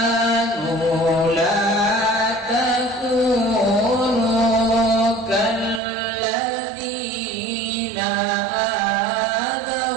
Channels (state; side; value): drops out; left; at 5.8 s